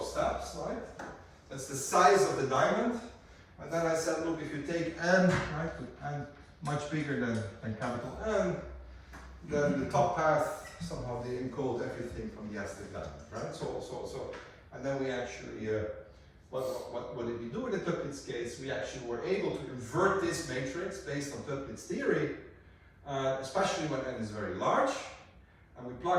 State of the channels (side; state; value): both; identical; correlation 1.00